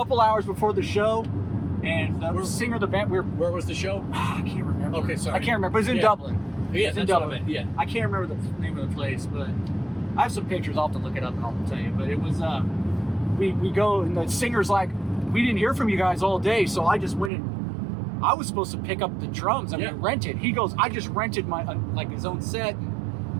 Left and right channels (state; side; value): drops out; left; at 17.3 s